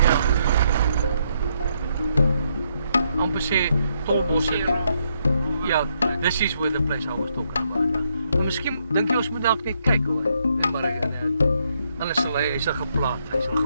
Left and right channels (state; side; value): inverted; both; correlation -0.75